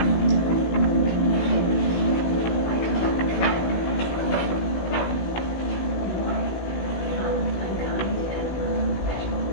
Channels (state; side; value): late; right; 16 ms